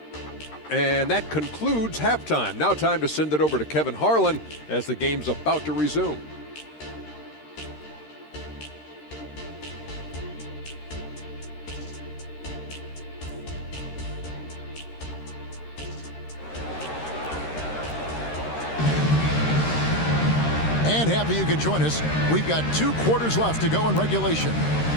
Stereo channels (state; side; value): late; right; 13 ms